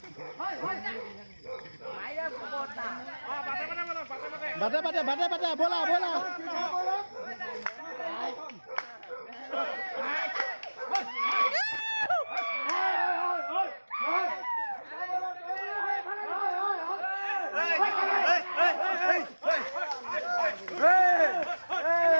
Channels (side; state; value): both; inverted; correlation -1.00